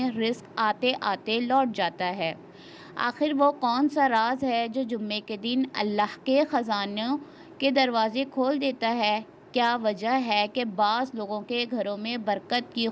رزق آتے آتے لوٹ جاتا ہے؟ آخر وہ کون سا راز ہے جو جمعے کے دن اللہ کے خزانوں کے دروازے کھول دیتا ہے؟ کیا وجہ ہے کہ بعض لوگوں کے گھروں میں برکت کی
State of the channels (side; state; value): both; identical; correlation 1.00